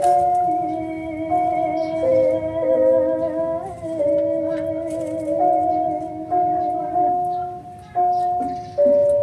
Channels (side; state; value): both; identical; correlation 1.00